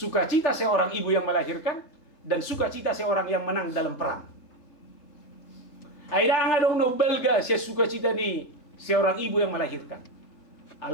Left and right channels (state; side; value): late; right; 3.5 ms